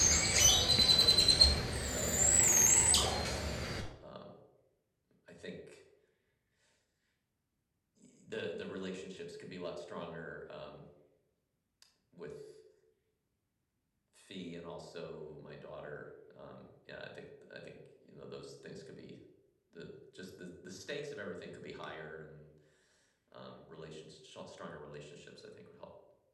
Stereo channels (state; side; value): identical; both; correlation 1.00